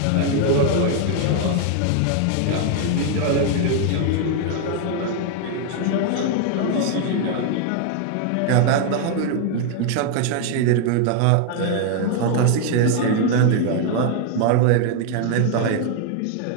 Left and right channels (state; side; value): different; both; correlation 0.00